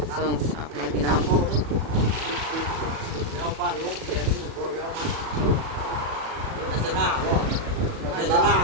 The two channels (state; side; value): late; left; 37 ms